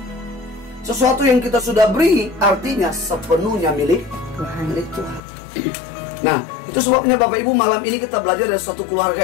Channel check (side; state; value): right; drops out; at 5.2 s